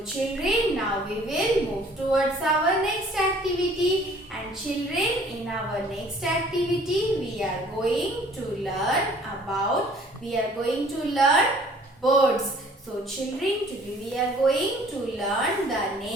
children, now we will move towards our next activity. And children, in our next activity we are going to learn birds. So children, today we are going to learn the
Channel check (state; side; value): normal; both; correlation 0.55